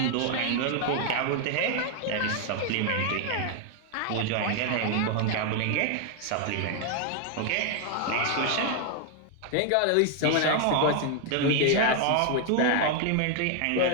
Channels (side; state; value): both; different; correlation 0.00